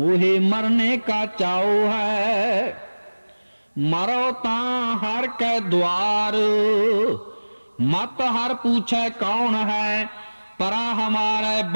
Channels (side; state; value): both; inverted; correlation -1.00